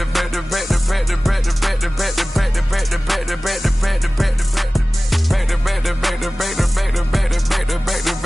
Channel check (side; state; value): both; normal; correlation 0.98